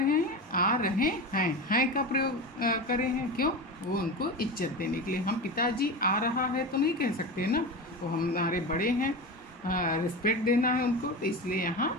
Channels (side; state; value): both; normal; correlation 0.24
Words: हैं? आ रहे हैं का प्रयोग कर रहे हैं। क्यों? वो उनको इज्जत देने के लिए। हम पिताजी आ रहा है तो नहीं कह सकते ना, वो हमारे बड़े हैं, रिस्पेक्ट देना है उनको, तो इसलिए